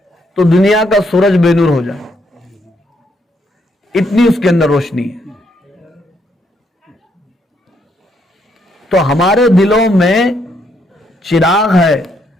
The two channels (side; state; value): both; normal; correlation 0.74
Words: تو دنیا کا سورج بے نور ہو جائے، اتنی اس کے اندر روشنی ہے۔ تو ہمارے دلوں میں چراغ ہے،